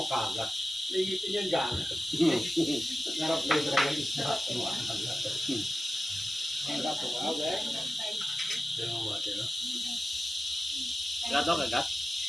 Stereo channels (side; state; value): both; normal; correlation 0.94